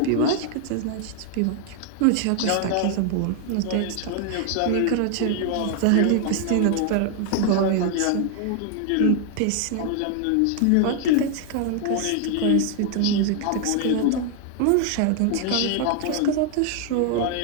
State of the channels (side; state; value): both; different; correlation 0.00